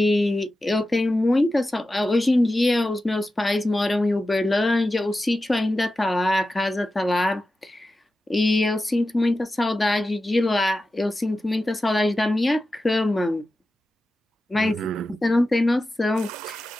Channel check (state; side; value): normal; both; correlation 0.93